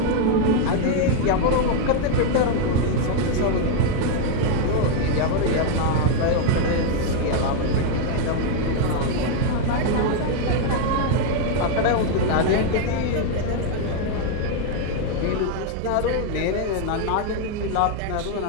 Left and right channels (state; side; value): different; both; correlation 0.01